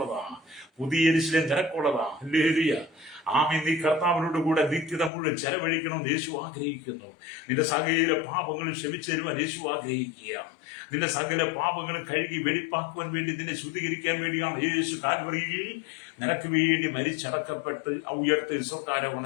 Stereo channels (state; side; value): drops out; right; at 5.1 s